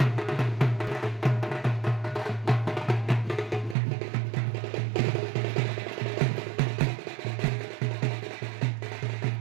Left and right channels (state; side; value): drops out; left; at 3.8 s